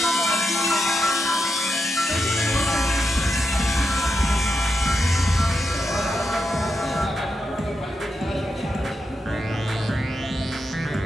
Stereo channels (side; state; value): both; normal; correlation 0.85